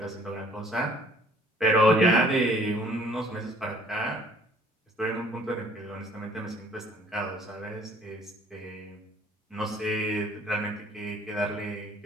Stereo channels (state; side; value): normal; both; correlation 0.57